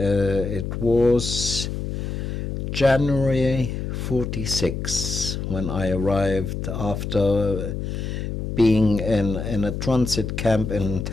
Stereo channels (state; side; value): noise; left; hum, 4 dB below the sound